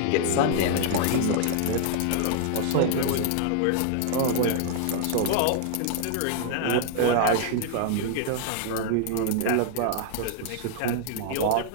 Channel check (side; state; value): both; different; correlation -0.01